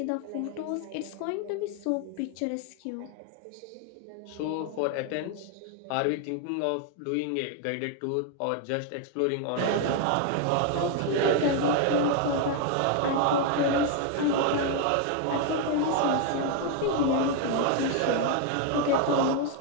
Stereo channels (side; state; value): both; different; correlation 0.01